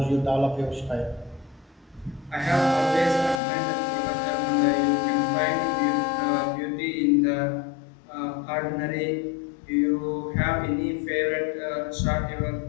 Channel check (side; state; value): right; drops out; at 3.4 s